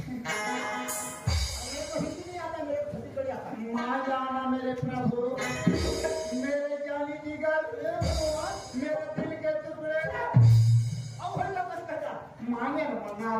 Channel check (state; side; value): identical; both; correlation 1.00